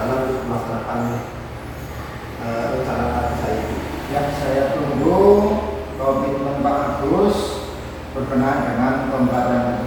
untuk melaksanakan rencana saya itu. Yang saya tunggu komitmen Pak Agus berkenaan dengan pembelajaran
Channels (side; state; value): both; identical; correlation 1.00